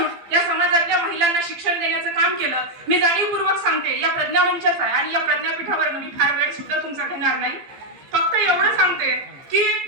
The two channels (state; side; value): late; left; 15 ms